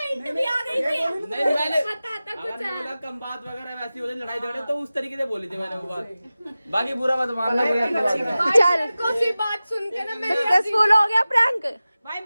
मैंने, कम बात वगैरह वैसी हो जाए, लड़ाई झगड़े तो उस तरीके से बोली थी मैंने वो बात, बाकी बुरा मत मानना। चल कोई बात सुन के ना मेरे सक्सेसफुल हो गया प्रैंक। भाई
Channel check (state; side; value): inverted; both; correlation -0.96